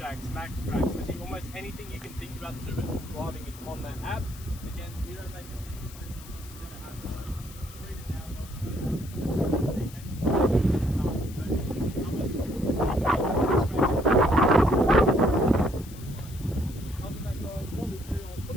max tracks, literally almost anything you can think about to do with driving is on that app. Again, we don't make a single signal, we're going to have to read it down. Other than that guys, what we'll do, I'll put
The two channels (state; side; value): noise; left; hiss, 18 dB below the sound